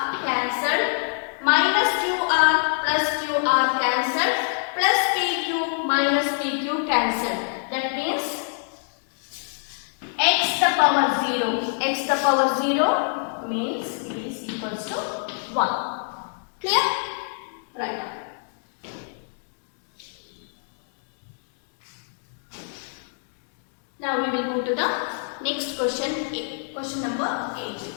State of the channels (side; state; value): right; silent; digital silence